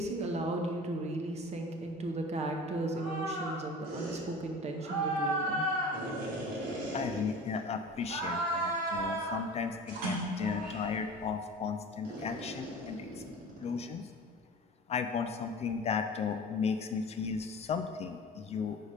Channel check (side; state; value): both; normal; correlation 0.38